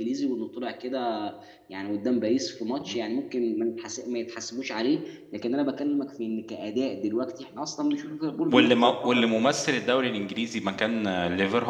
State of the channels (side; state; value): both; identical; correlation 1.00